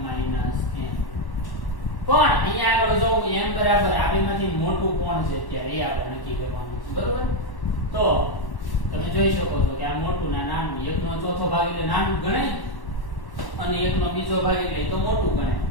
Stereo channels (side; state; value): right; late; 1.1 ms